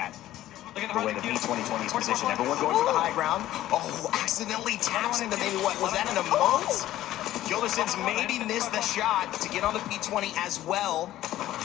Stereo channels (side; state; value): right; quieter; 14.0 dB